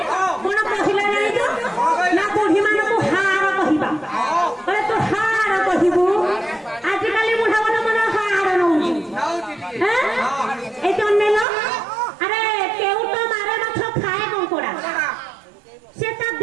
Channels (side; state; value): left; drops out; at 11.5 s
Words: कोन कहिला नाही तो ना बुढ़ी मान को हार कहिबा अरे तो हार कहिबू आज काली बुढ़ा मन मन हार नउची हैं ए तो नेलो अरे केउ तो मारे माछ खाए कंकोड़ा से ता